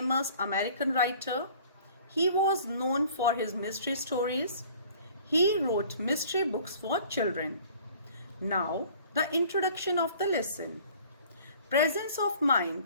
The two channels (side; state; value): both; inverted; correlation -0.51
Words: American writer. He was known for his mystery stories. He wrote mystery books for children. Now, the introduction of the lesson. Presence of